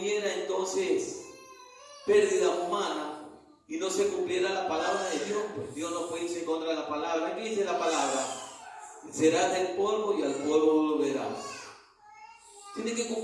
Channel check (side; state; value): both; identical; correlation 1.00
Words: entonces pérdida humana y no se cumpliera la palabra de Dios. Pues Dios no puede irse en contra de la palabra. ¿Qué dice la palabra? Serás del polvo y al polvo volverás. Tiene que